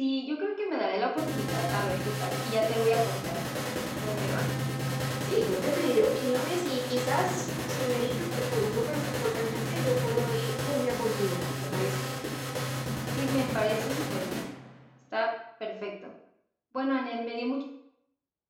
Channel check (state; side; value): identical; both; correlation 1.00